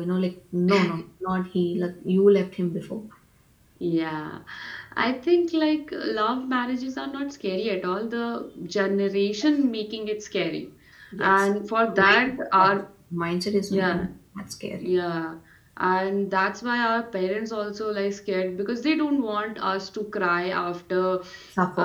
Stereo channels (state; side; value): identical; both; correlation 1.00